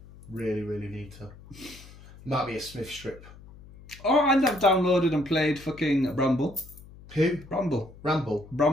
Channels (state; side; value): noise; left; hum, 20 dB below the sound